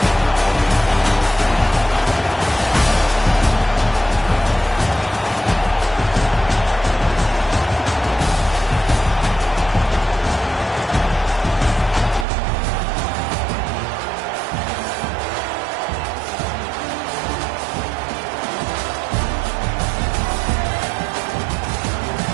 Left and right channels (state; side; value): drops out; left; at 12.2 s